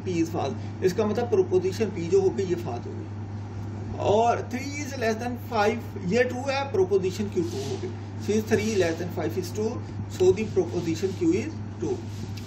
P is false, इसका मतलब प्रोपोजिशन P जो होगी ये फॉल्स होगी। और 3 इज लेस देन 5 ये ट्रू है, प्रोपोजिशन Q ट्रू होगी। Since 3 less than 5 is true, so the proposition Q is true.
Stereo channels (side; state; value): both; identical; correlation 1.00